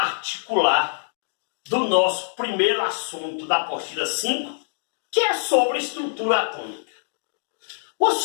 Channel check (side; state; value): right; silent; digital silence